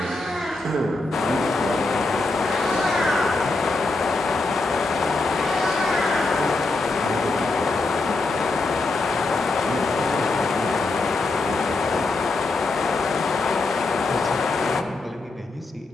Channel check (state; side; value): quieter; right; 3.4 dB